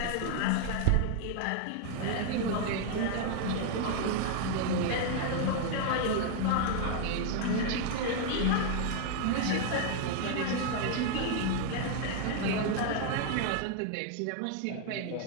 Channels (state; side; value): different; both; correlation 0.00